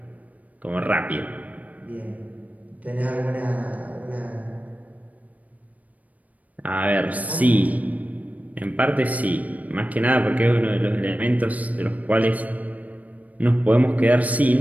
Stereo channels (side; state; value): left; late; 0.072 ms